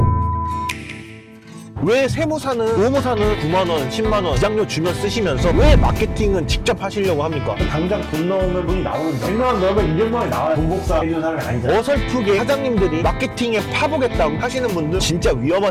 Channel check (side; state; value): both; identical; correlation 1.00